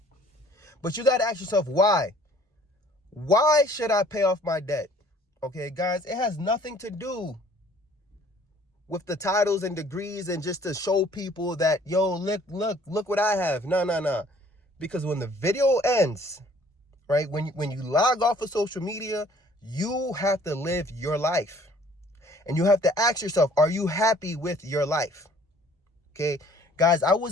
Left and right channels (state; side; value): normal; both; correlation 0.56